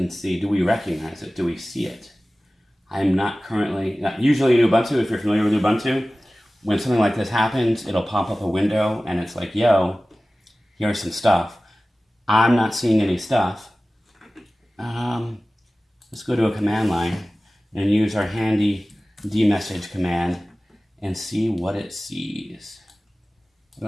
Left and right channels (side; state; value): both; normal; correlation 0.97